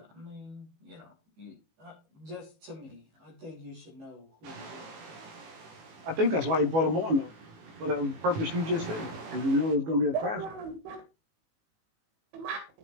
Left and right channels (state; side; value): late; left; 18 ms